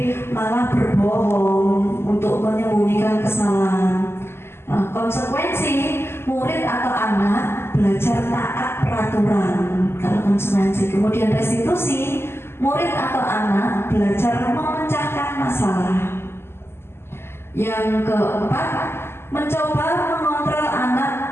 malah berbohong untuk menyembunyikan kesalahan. Nah, konsekuensi, murid atau anak belajar taat peraturan. Kalau konsekuensi. Kemudian restitusi, murid atau anak belajar memecahkan masalah. Yang keempat, mencoba mengontrol anak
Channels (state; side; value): late; right; 0.12 ms